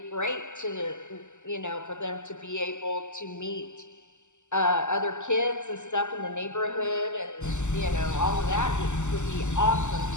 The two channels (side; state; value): right; late; 0.84 ms